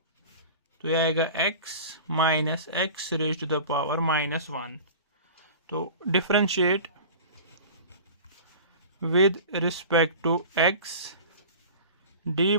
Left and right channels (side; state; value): both; inverted; correlation -0.38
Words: तो यह आएगा x minus x raise to the power minus 1। तो differentiate with respect to x d